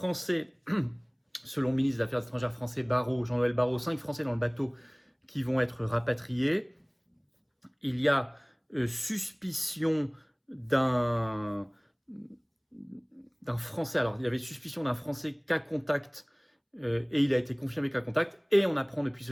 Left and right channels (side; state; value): both; identical; correlation 1.00